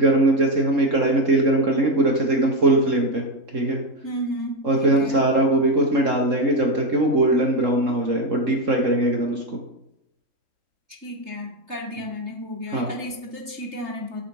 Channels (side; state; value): left; late; 3.3 ms